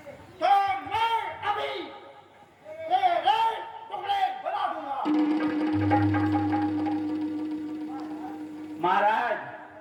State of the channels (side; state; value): both; identical; correlation 1.00